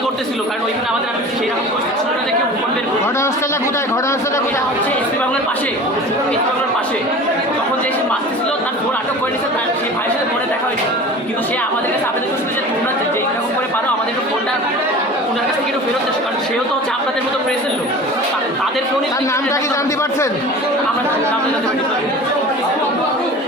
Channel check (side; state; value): both; normal; correlation 0.38